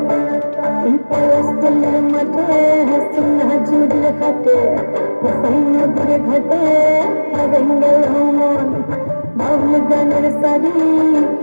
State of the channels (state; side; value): inverted; both; correlation -1.00